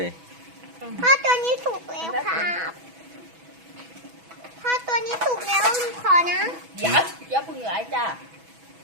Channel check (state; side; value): late; left; 6.1 ms